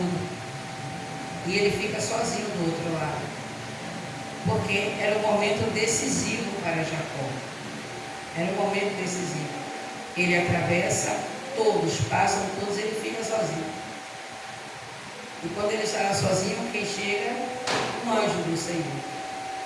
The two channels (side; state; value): both; identical; correlation 1.00